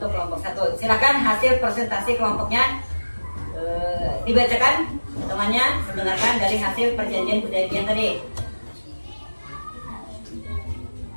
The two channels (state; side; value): inverted; both; correlation -1.00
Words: kelompok 1. Silakan hasil presentasi kelompoknya dibacakan temannya, mendengarkan dari hasil perjanjian Hudaybiyah tadi.